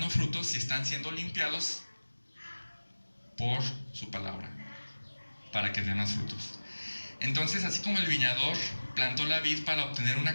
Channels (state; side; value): inverted; both; correlation -1.00